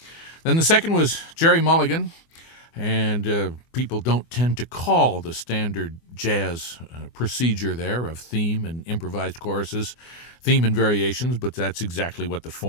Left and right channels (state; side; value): late; right; 24 ms